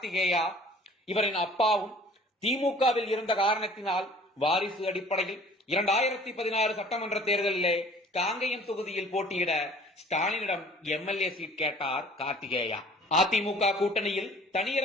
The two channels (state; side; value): normal; both; correlation 0.50